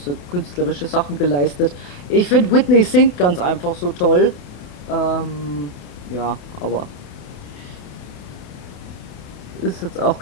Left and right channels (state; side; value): late; right; 28 ms